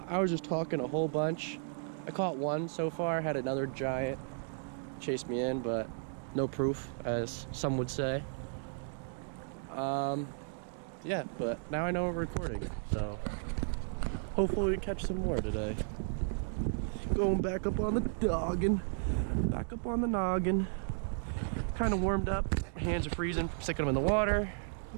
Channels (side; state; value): left; silent; digital silence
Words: was just talking a whole bunch. I caught one so far, had another giant chase me in, but no proof, as some would say. Yeah, but now I know we're recording, so hopefully we catch some more today. Going back up on the noggin. Back up on the noggin. Kind of warmed up. Hands are freezing from sticking them in the water.